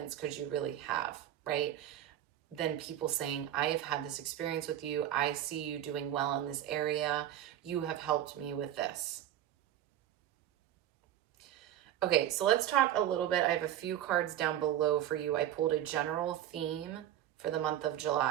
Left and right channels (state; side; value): quieter; left; 11.8 dB